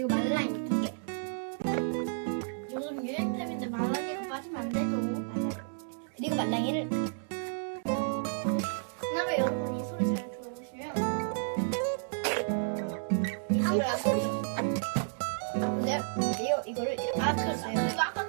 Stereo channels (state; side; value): silent; left; digital silence